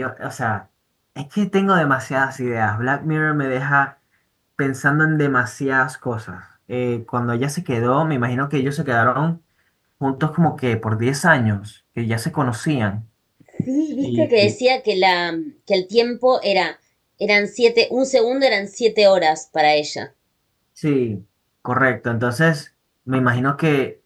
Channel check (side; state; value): both; identical; correlation 1.00